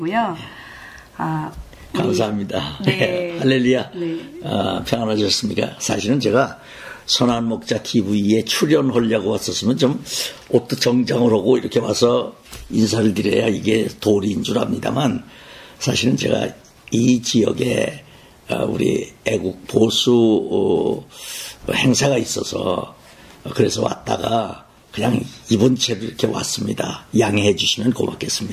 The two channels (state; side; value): identical; both; correlation 1.00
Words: 감사합니다. 네. 할렐루야. 네. 평안하셨습니까? 사실은 제가 선한목자 TV에 출연하려고 왔었으면 좀 옷도 정장을 하고 이렇게 와서 인사를 드려야 이게 도리인 줄 압니다만, 사실은 제가 이 지역에 우리 애국 보수 행사가 있어서 그래서 왔다가 그냥 이번 채로 이렇게 왔습니다. 양해해 주시면